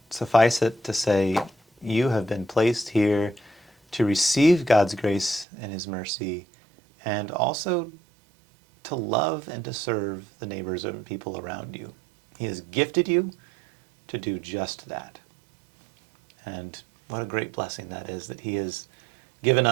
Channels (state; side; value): drops out; left; at 5.5 s